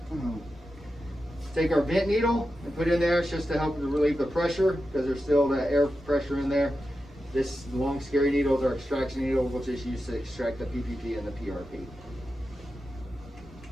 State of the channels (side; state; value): both; normal; correlation 0.90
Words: take our vent needle and put it in there. It's just to help to relieve the pressure, because there's still that air pressure in there. This long scary needle is our extraction needle, which is used to extract the PPP and the PRP.